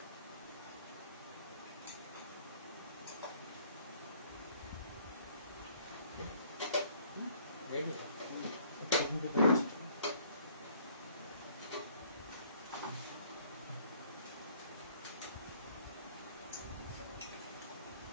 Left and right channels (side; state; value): both; inverted; correlation -0.59